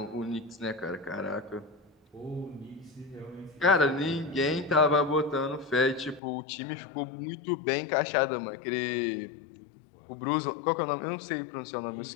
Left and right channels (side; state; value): right; drops out; at 6.2 s